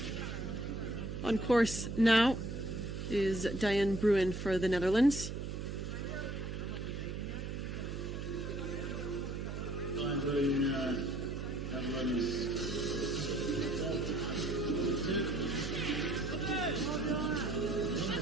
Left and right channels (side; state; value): right; noise; hum, 5 dB below the sound